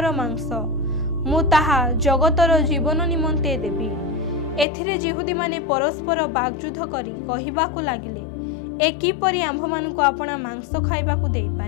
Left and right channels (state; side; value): drops out; right; at 4.7 s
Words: ମାଂସ। ମୁଁ ତାହା ଜଗତର ଜୀବନ ନିମନ୍ତେ ଦେବି। ଏଥିରେ ଯିହୁଦୀମାନେ ପରସ୍ପର ବାଗଯୁଦ୍ଧ କରି କହିବାକୁ ଲାଗିଲେ, ଏ କିପରି ଆମ୍ଭମାନଙ୍କୁ ଆପଣା ମାଂସ ଖାଇବାକୁ